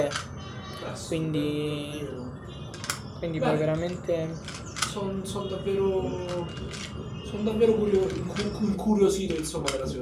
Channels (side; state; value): both; identical; correlation 1.00